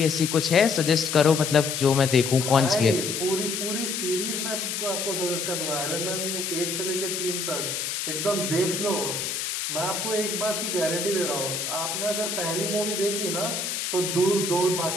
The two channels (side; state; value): left; noise; hiss, 3 dB below the sound